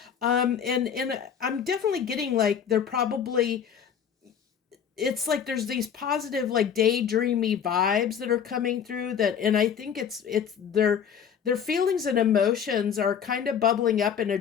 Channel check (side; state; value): right; quieter; 7.9 dB